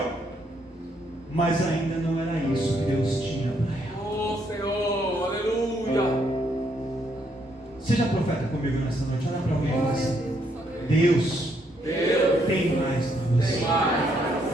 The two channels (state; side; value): normal; both; correlation 0.73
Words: Mas ainda não era isso que Deus tinha para ela. Oh Senhor, aleluia. Seja profeta comigo nessa noite, olha para alguém e fala assim: Deus tem mais para você.